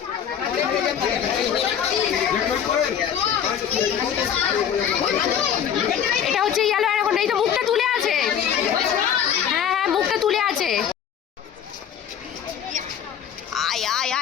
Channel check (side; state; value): right; quieter; 8.7 dB